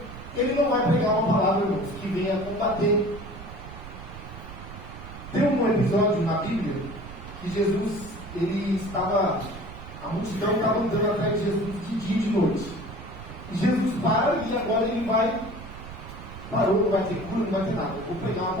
ele não vai pregar uma palavra, irmãos, que venha combater. Tem um episódio na Bíblia que Jesus, a multidão estava andando atrás de Jesus de dia e de noite. E Jesus para e agora ele parou, não vai ter cura, não vai ter nada, eu vou pregar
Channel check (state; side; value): noise; right; rumble, 13 dB below the sound